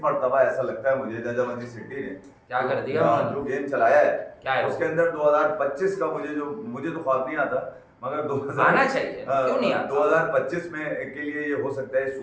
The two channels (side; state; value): both; identical; correlation 1.00